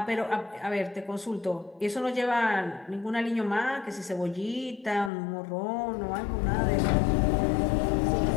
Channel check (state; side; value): drops out; right; at 5.1 s